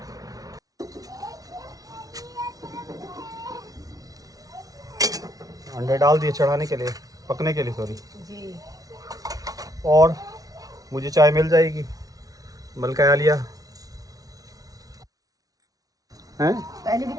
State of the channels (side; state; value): left; late; 0.18 ms